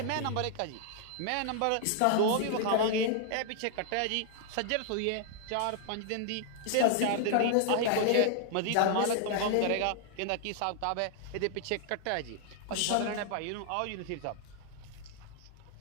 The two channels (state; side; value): different; both; correlation -0.01